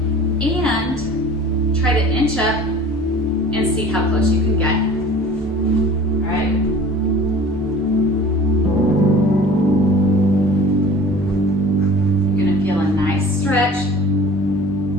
and try to inch up and see how close you can get. All right? You're gonna feel a nice stretch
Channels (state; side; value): normal; both; correlation 0.44